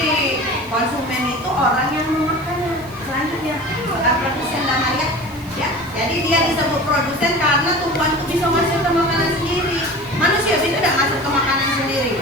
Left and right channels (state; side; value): noise; right; hiss, 23 dB below the sound